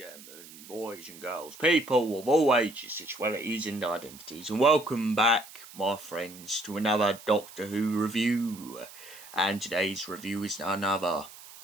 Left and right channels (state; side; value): noise; right; hiss, 18 dB below the sound